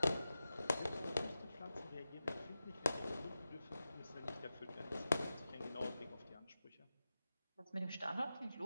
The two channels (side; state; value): both; inverted; correlation -0.93